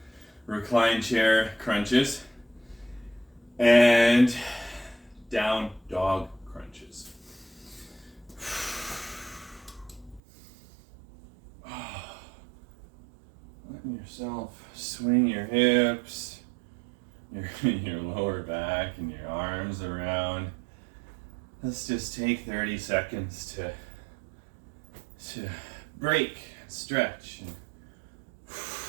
recline chair crunches, and down dog crunches. Letting yourself swing your hips, your lower back and your arms around. Let's just take 30 seconds to break, stretch, and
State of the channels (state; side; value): drops out; left; at 10.2 s